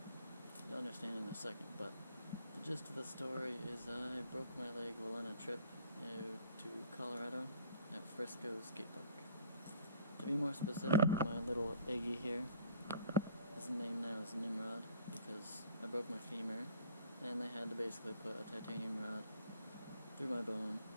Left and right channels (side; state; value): both; inverted; correlation -0.54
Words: You'll understand in a second, but the gist of the story is I broke my leg while on a trip to Colorado at Frisco Skate Park. To be more specific, my little Iggy here, his name now is Nimrod because I broke my femur and they had to basically put a titanium rod through my bone